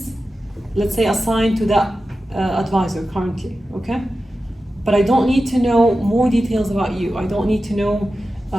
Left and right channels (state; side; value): normal; both; correlation 0.93